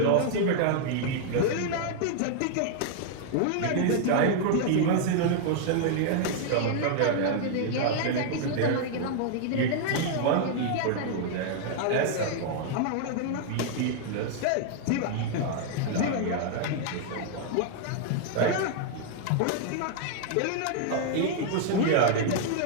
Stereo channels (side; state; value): both; different; correlation 0.00